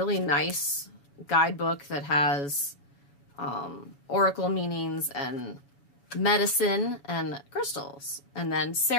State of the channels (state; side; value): late; right; 7.0 ms